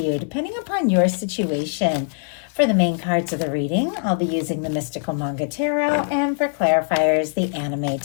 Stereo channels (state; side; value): silent; right; 64 dB below the other